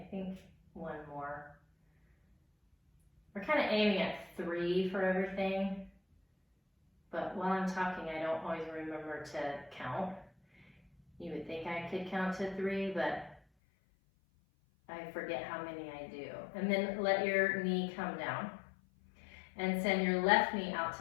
think one more. We're kind of aiming at 3 for everything, but while I'm talking, I don't always remember to count. You would think I could count to 3, but I forget how many I do. And then let your knee come down and send your left knee out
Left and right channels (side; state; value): right; drops out; at 13.4 s